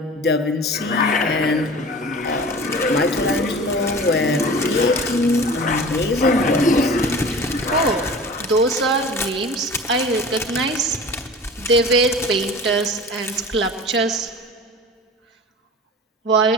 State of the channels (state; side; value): normal; both; correlation 0.38